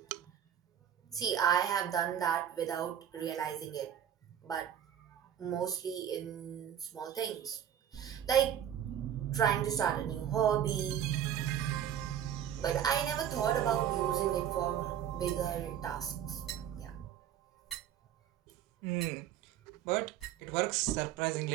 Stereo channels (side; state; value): left; quieter; 9.8 dB